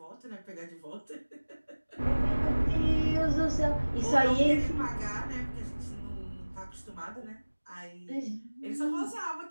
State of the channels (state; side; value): inverted; both; correlation -1.00